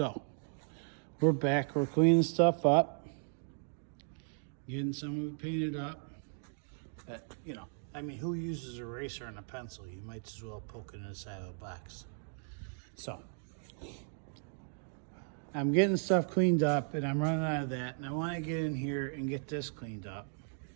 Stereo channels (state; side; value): silent; left; 54 dB below the other